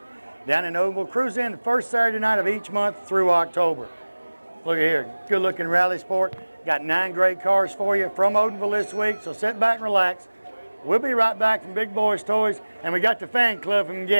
Down in Odenville, cruise in the first Saturday night of each month through October. Look at here, good looking rally sport. Got 9 great cars for you from Odenville this week, so sit back and relax. We'll be right back from Big Boys Toys, and we got the fan club from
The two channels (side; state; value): both; inverted; correlation -1.00